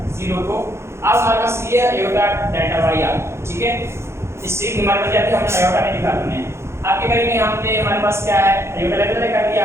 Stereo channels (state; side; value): late; left; 0.13 ms